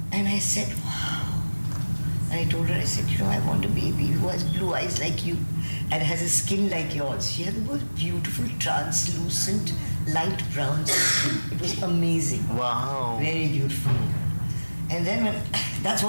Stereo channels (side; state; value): both; inverted; correlation -1.00